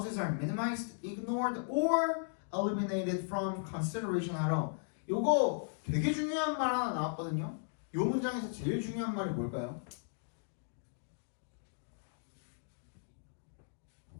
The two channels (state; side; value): silent; right; digital silence